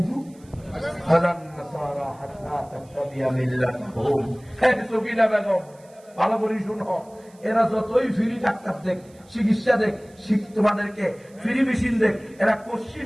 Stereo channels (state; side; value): noise; right; hiss, 29 dB below the sound